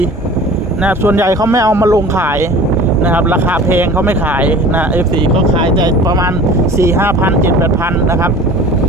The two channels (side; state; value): both; normal; correlation 0.42